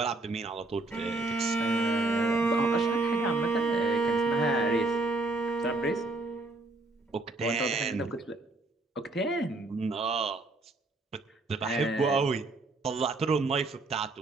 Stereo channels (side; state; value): left; quieter; 3.1 dB